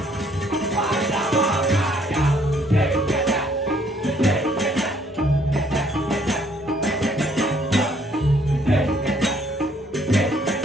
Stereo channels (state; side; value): normal; both; correlation 0.64